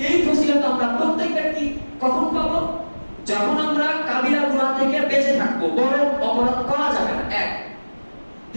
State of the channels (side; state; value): both; inverted; correlation -1.00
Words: এই ফজিলত আমরা প্রত্যেক ব্যক্তি কখন পাবো? যখন আমরা কাবিরা গুনাহ থেকে বেঁচে থাকবো, বড় অপরাধ করা যাবে না, এক।